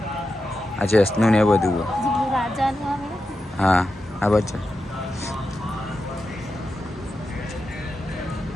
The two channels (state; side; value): normal; both; correlation 0.89